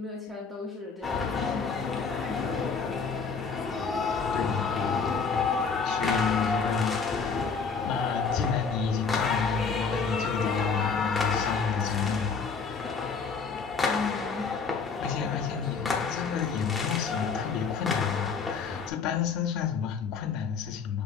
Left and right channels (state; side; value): quieter; right; 5.3 dB